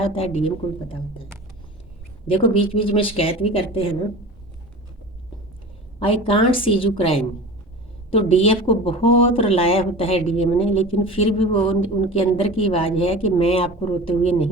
है, डीएम को भी पता होता है। देखो बीच बीच में शिकायत भी करते हैं ना। I can't see you crime, तो डीएफ को बहुत रुलाया होता है डीएम ने, लेकिन फिर भी वो उनके अंदर की आवाज़ है कि मैं आपको रोते हुए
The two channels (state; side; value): normal; both; correlation 0.36